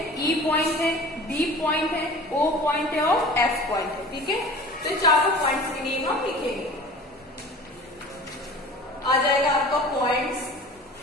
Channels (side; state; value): both; normal; correlation 0.41